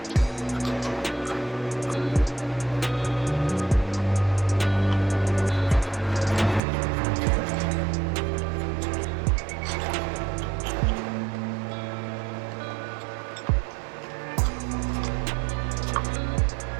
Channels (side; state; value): left; drops out; at 6.6 s